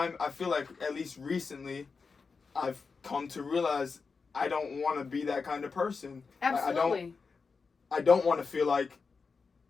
feel like at least recently, I've come to realize I don't want to be that kind of person. Absolutely. I don't want to feel like,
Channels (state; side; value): quieter; right; 4.9 dB